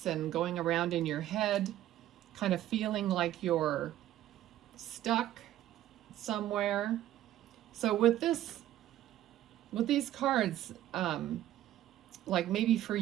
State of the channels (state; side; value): quieter; left; 13.2 dB